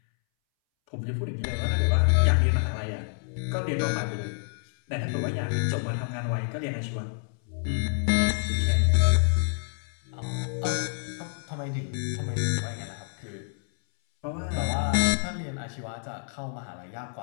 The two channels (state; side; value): silent; right; 59 dB below the other